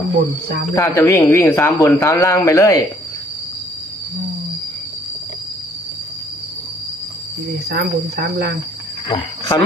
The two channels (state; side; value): normal; both; correlation 0.62